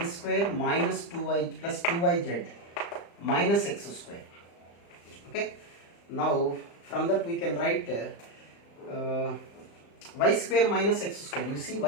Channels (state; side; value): late; right; 35 ms